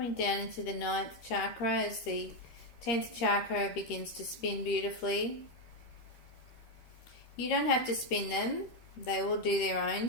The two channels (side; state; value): right; late; 13 ms